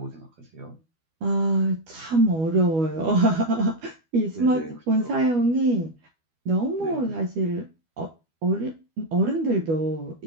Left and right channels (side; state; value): left; late; 12 ms